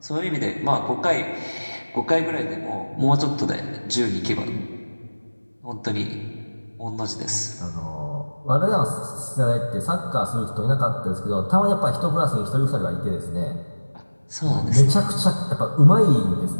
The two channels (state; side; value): inverted; both; correlation -1.00